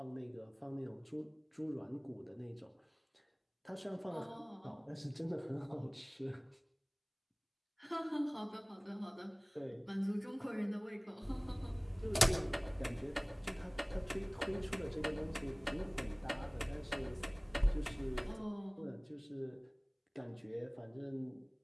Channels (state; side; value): identical; both; correlation 1.00